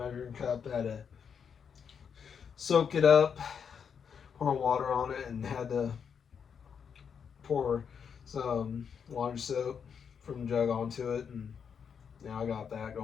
cup. Had to soak it up, pour water on it, and had to pour some laundry soap from the jug onto it, and now I got that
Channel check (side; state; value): right; quieter; 7.0 dB